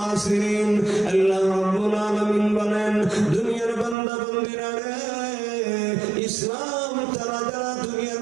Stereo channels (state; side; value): drops out; left; at 4.0 s